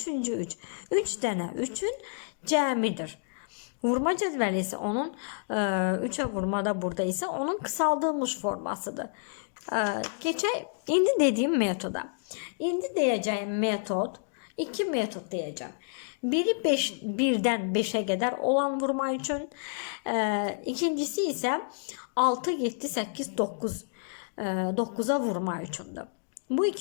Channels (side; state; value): right; silent; digital silence